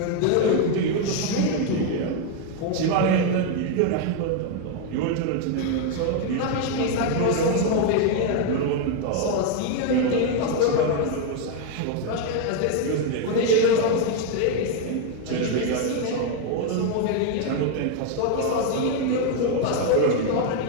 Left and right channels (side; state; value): both; different; correlation 0.01